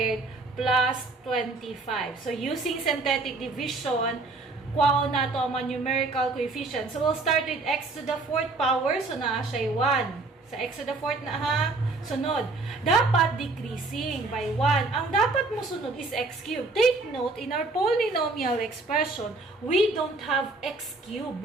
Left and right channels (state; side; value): quieter; left; 3.5 dB